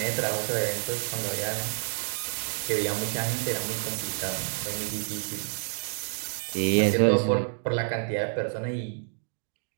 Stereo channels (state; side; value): silent; left; digital silence